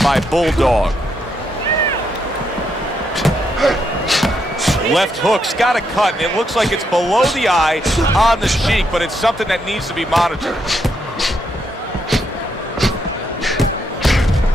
Bulldog. Left hook's got a cut, and it looks like it's below the eye on the cheek, but it's something that needs to be monitored.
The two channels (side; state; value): both; normal; correlation 0.78